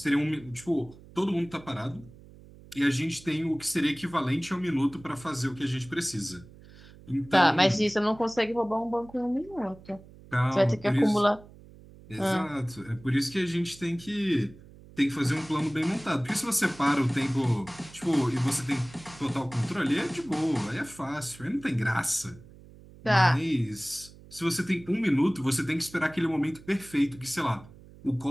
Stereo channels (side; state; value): right; noise; hum, 21 dB below the sound